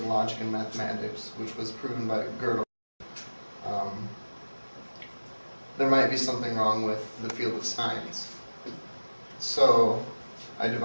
logic and mathematics, which was proven by Gödel, there might be something wrong with the field of science. So I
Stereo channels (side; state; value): both; inverted; correlation -1.00